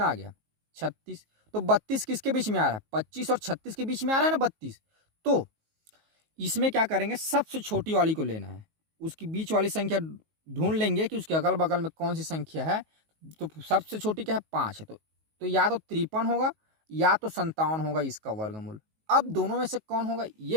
आ गया 36। तो 32 किसके बीच में आ रहा है, 25 और 36 के बीच में आ रहा है ना 32। तो इसमें क्या करेंगे, सबसे छोटी वाली को लेना है, उसकी बीच वाली संख्या ढूंढ लेंगे कि उसके अगल बगल में कौन सी संख्या है। तो सबसे छोटी क्या है, 5 है। तो या तो 53 होगा या तो 57 होगा इसका वर्गमूल। अब दोनों में से कौन होगा ये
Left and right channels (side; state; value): left; late; 19 ms